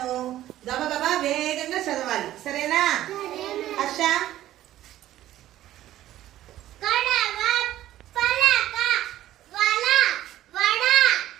గబగబా వేగంగా చదవాలి, సరేనా? Harsha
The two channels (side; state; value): left; quieter; 13.6 dB